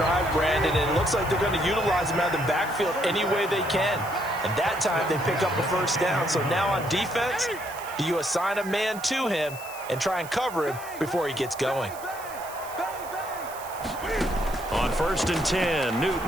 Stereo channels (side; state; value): right; noise; hiss, 16 dB below the sound